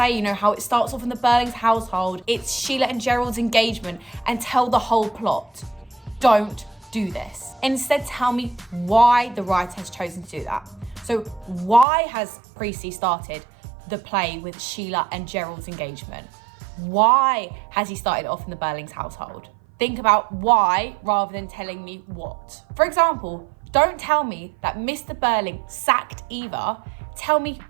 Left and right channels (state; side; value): drops out; left; at 11.9 s